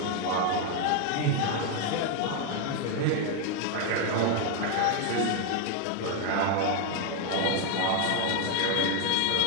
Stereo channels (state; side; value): different; both; correlation 0.01